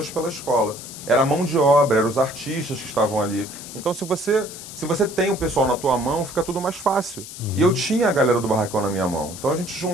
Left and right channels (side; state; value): left; noise; hiss, 13 dB below the sound